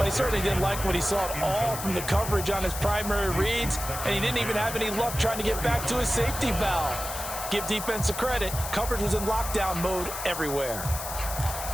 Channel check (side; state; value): left; noise; hiss, 7 dB below the sound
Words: he certainly didn't like what he saw at all from the coverage on his primary reads, and he didn't even have any luck trying to get back to his safety valve. Give defense a credit. Coverage was in lockdown mode everywhere.